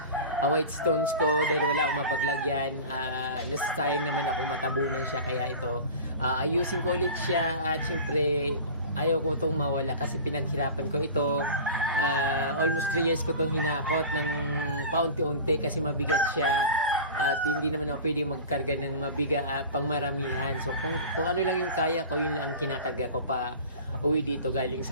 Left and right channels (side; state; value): both; inverted; correlation -0.36